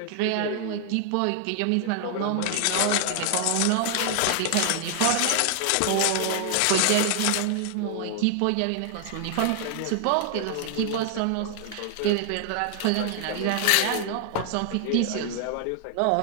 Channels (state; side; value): different; both; correlation 0.00